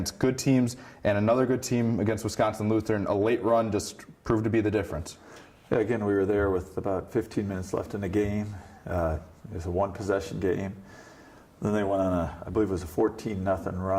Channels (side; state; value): both; identical; correlation 1.00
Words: good teams, and another good team against Wisconsin Lutheran. A late run just proved to be the difference. Yeah, again, we were there with about 15 minutes left in the game. It was a one-possession game. Then they went on I believe it was a 14-0